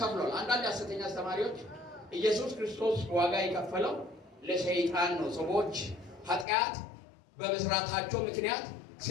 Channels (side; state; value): right; drops out; at 6.5 s